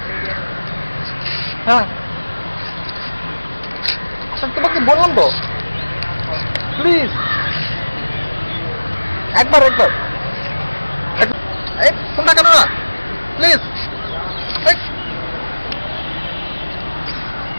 হ্যাঁ তোমাকে বললাম তো, প্লিজ একবার ফোনটা কেন না, প্লিজ।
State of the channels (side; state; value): both; inverted; correlation -1.00